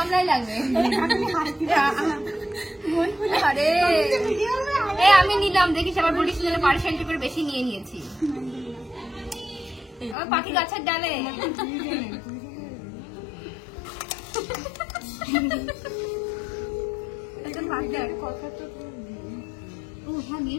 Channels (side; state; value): right; drops out; at 10.2 s